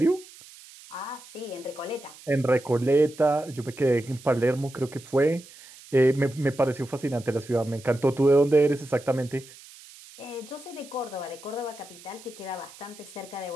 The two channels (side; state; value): right; noise; hiss, 20 dB below the sound